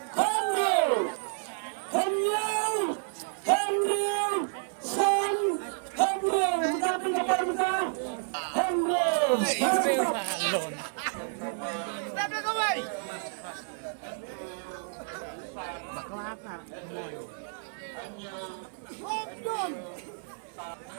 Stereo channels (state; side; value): silent; left; digital silence